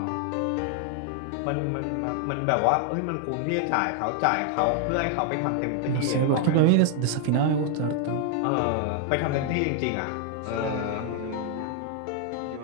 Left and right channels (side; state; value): both; different; correlation 0.00